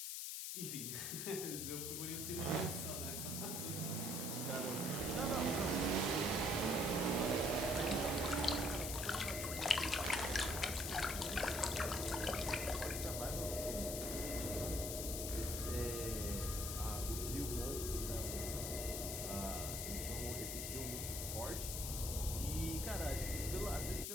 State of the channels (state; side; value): noise; left; hiss, 3 dB below the sound